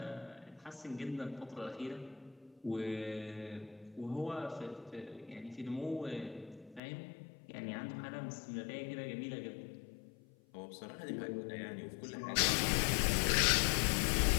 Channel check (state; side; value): drops out; right; at 6.8 s